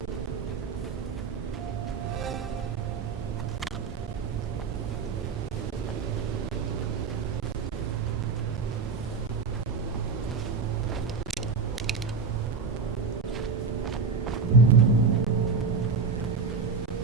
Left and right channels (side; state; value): left; quieter; 5.1 dB